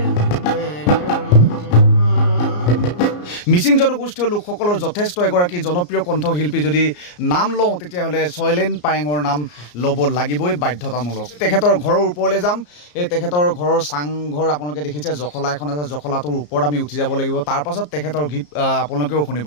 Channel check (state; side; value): late; right; 34 ms